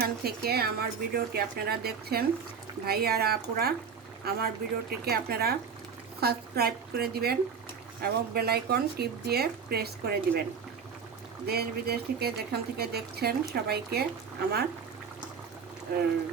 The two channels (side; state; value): left; quieter; 6.2 dB